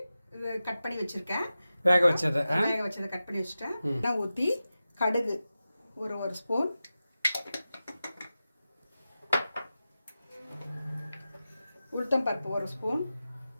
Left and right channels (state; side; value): inverted; both; correlation -0.94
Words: இது கட் பண்ணி வச்சிருக்கேன். வேக வச்சதை கட் பண்ணி வச்சுட்டேன். எண்ணெய் ஊற்றி கடுகு ஒரு ஸ்பூன், உளுத்தம்பருப்பு 1 ஸ்பூன்,